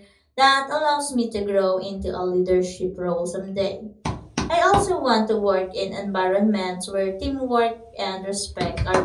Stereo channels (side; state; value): both; identical; correlation 1.00